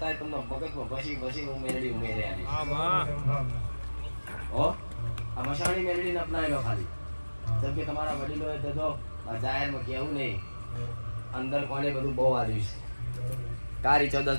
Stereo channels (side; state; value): both; inverted; correlation -1.00